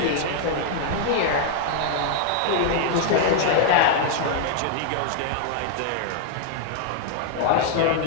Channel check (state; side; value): different; both; correlation 0.00